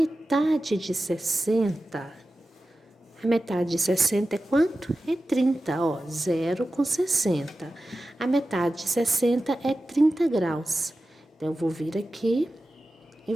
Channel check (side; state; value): both; normal; correlation 0.94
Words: de 60 é quanto? É 30, ó, 0 com 60. A metade de 60 é 30 graus. Então, eu vou vir aqui e